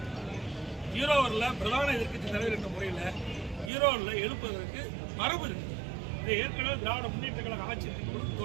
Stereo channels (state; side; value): drops out; left; at 3.7 s